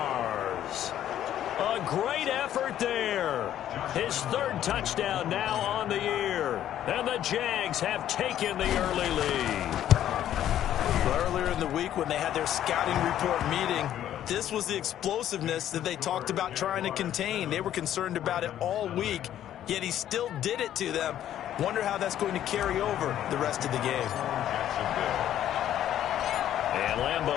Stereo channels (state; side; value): quieter; right; 11.4 dB